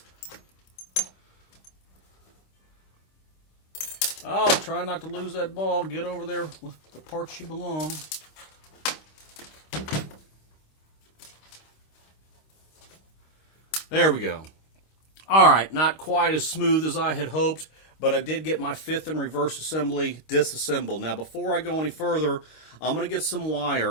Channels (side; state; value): right; late; 26 ms